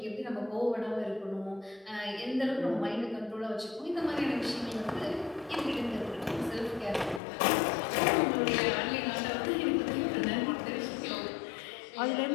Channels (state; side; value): drops out; right; at 7.2 s